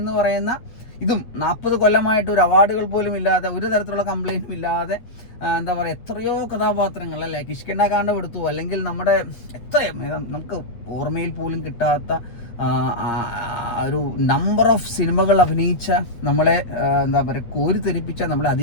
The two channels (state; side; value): late; right; 8.5 ms